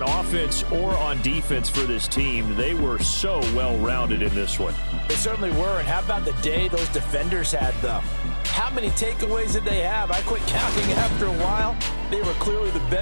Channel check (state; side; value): inverted; both; correlation -1.00